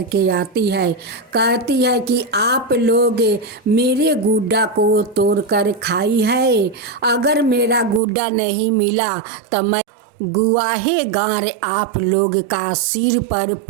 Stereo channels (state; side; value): drops out; left; at 8.0 s